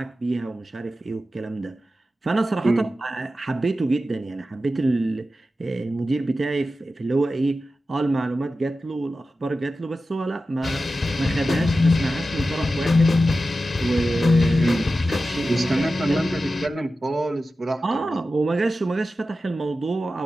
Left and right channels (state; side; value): normal; both; correlation 0.93